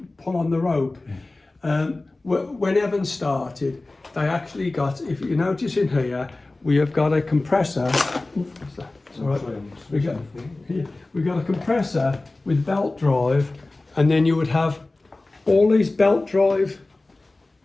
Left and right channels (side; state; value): right; quieter; 3.0 dB